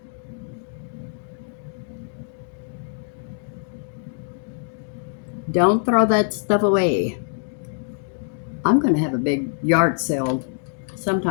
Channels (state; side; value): silent; right; digital silence